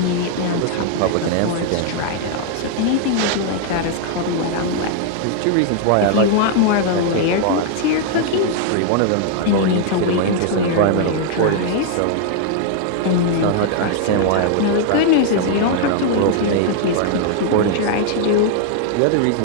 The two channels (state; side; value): different; both; correlation 0.00